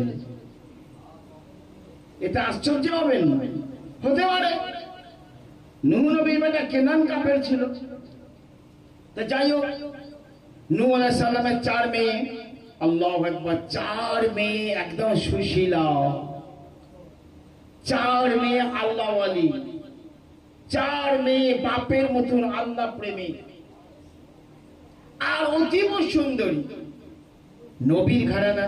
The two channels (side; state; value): both; identical; correlation 1.00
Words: এটা আশ্চর্য হবেন না, হতে পারে। নূহ নবীর বেটা কেনান কাফের ছিল। তো যাই হোক, নূহ আলাইহিস সালামের 4 মেয়ে, আল্লাহু আকবার, 4 মেয়ে একদম সুশীলা, 4 মেয়ে আল্লাহ ওয়ালি, 4 মেয়ে বাপের মতন আল্লাহ প্রেমী, আর অতীব সুন্দরী। নবীর ঘরানা